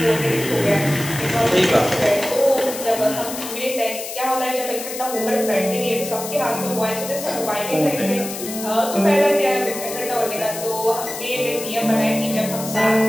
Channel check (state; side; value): noise; left; hiss, 9 dB below the sound